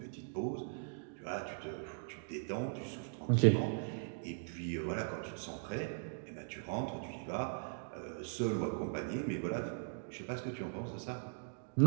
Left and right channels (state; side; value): silent; left; digital silence